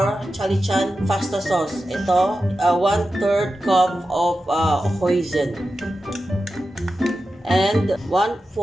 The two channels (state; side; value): normal; both; correlation 0.92